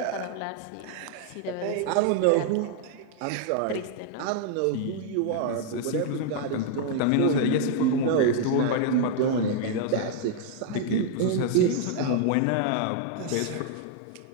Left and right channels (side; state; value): both; different; correlation 0.00